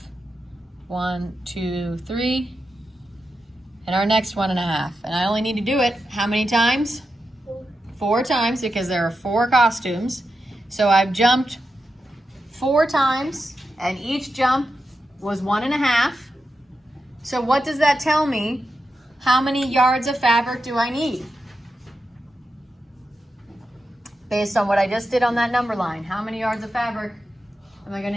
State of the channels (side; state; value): both; normal; correlation 0.89